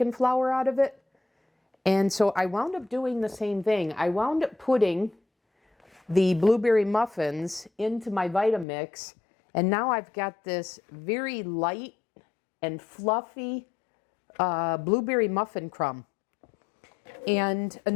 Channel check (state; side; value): drops out; right; at 8.7 s